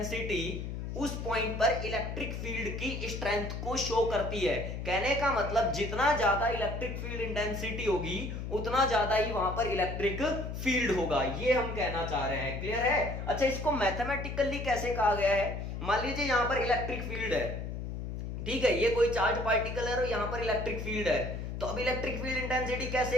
उस पॉइंट पर इलेक्ट्रिक फील्ड की स्ट्रेंथ को शो करती है। कहने का मतलब जितना ज्यादा इलेक्ट्रिक फील्ड इंटेंसिटी होगी उतना ज्यादा ही वहां पर इलेक्ट्रिक फील्ड होगा, ये हम कहना चाह रहे हैं। क्लियर है? अच्छा, इसको मैथमेटिकली कैसे कहा गया है? मान लीजिए यहां पर इलेक्ट्रिक फील्ड है, ठीक है, ये कोई चार्ज पार्टिकल है और यहां पर इलेक्ट्रिक फील्ड है, तो अब इलेक्ट्रिक फील्ड इंटेंसिटी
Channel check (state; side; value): noise; left; hum, 6 dB below the sound